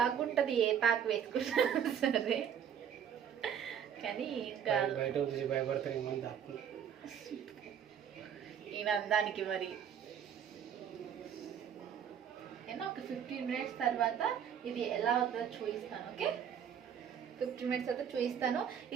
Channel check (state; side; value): quieter; left; 8.5 dB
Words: ఉంటుంది ఏ ప్యాక్ వేసుకున్నా సరే. కానీ ఇంకా భయపడతారు ఈయన అందానికి. మరి నేను ఒక 15 minutes తర్వాత ఇది ఎలా అవుతుందో చూపిస్తాను. ఓకే, 15 minutes అయితే చూపిస్తాను.